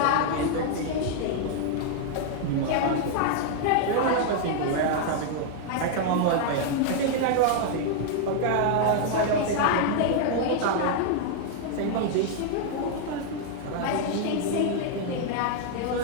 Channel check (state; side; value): different; both; correlation 0.00